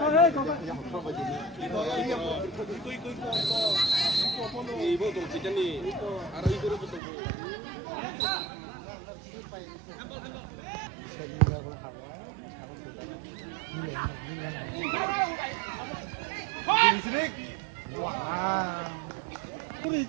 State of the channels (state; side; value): drops out; left; at 7.0 s